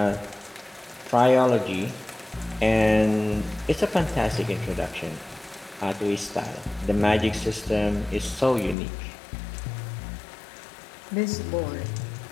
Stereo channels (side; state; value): right; drops out; at 8.8 s